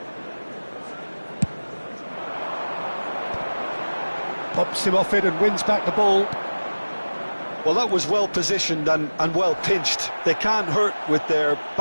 Pops him off it and wins back the ball. Well, that was well positioned and well pinched. They can't hurt with their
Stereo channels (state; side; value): inverted; both; correlation -1.00